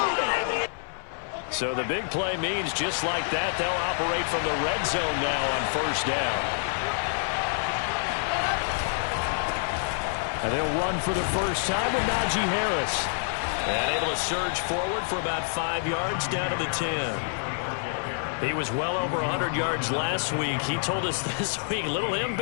So the big play means just like that, they'll operate from the red zone now on first down. And they'll run for the first time with Najee Harris. And able to surge forward for about 5 yards down to the 10. He was well over 100 yards last week. He told us this week, a little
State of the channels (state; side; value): silent; right; digital silence